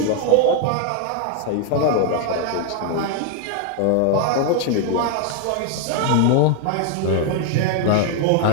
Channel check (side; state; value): both; different; correlation 0.00